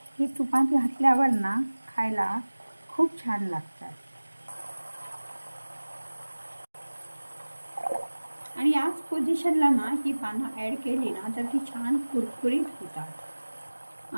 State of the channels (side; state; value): both; inverted; correlation -1.00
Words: ही तुपात घातल्यावर ना खायला खूप छान लागतात आणि याच पोझिशनला ना ही पानं ॲड केली ना तर ती छान कुरकुरीत होतात.